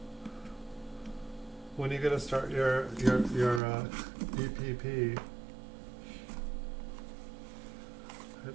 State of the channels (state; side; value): drops out; left; at 3.6 s